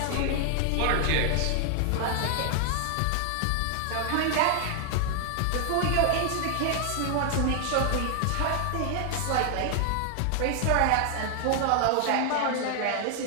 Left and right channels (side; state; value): both; different; correlation 0.00